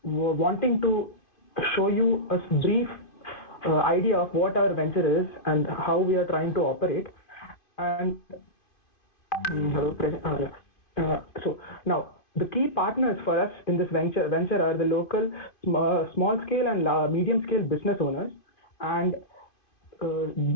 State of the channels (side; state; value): right; late; 2.5 ms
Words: wanting to show you a brief idea of what our venture is and how we are trying to operate. And so now the key partners for us in this venture are the local small scale and medium scale business owners, and